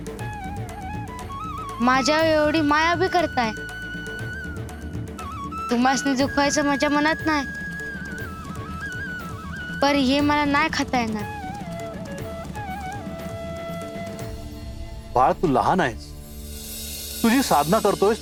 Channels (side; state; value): both; identical; correlation 1.00